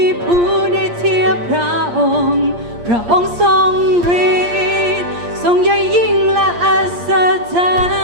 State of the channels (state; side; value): late; left; 8.6 ms